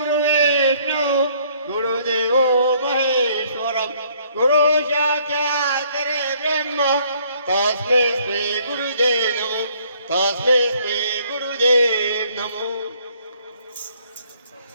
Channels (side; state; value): both; inverted; correlation -0.63